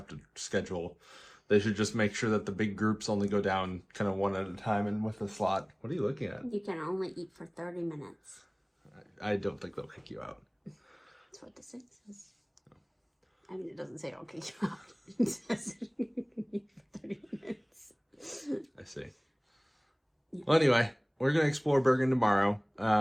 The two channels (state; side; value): identical; both; correlation 1.00